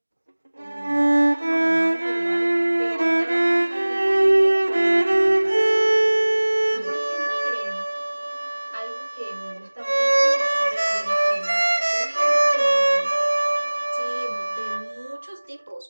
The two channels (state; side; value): inverted; both; correlation -1.00